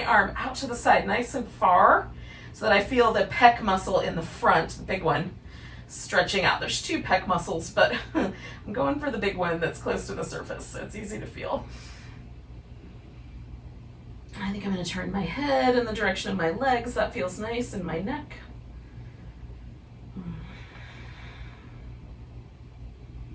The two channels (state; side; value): identical; both; correlation 1.00